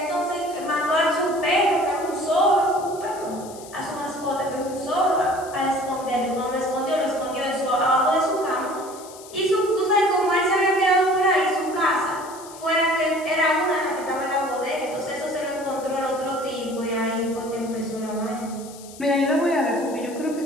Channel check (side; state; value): left; noise; hiss, 18 dB below the sound